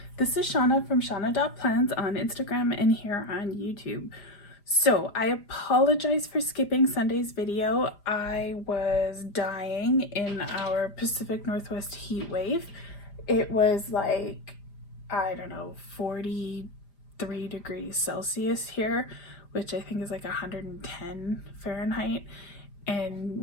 this is Shauna from Shauna.plans on Instagram and here on YouTube. So I apologize for skipping Sunday's video. I was dying in our Pacific Northwest heat wave. It was like, I don't know, 43 degrees Celsius here, which I think is like 110 Fahrenheit.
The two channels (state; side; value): late; right; 5.0 ms